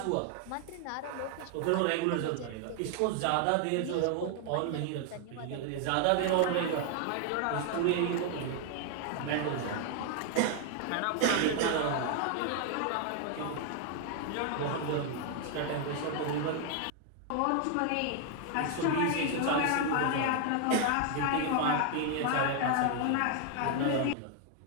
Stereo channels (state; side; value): different; both; correlation 0.00